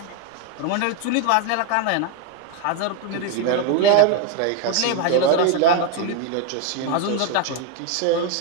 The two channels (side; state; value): both; different; correlation 0.01